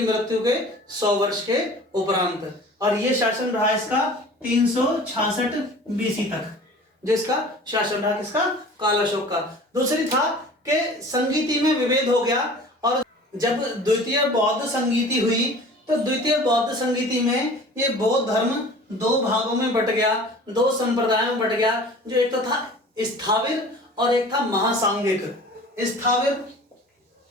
मृत्यु के 100 वर्ष के उपरांत। और ये शासन रहा इसका 366 बीसी तक, जिसका शासन रहा किसका, कालाशोक का। दूसरी था कि संगीति में विभेद हो गया और जब द्वितीय बौद्ध संगीति हुई तो द्वितीय बौद्ध संगीति में ये बौद्ध धर्म दो भागों में बट गया, दो संप्रदायों में बट गया, जो एक तो था स्थाविर और एक था महासांघिक। स्थाविर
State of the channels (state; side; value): normal; both; correlation 0.43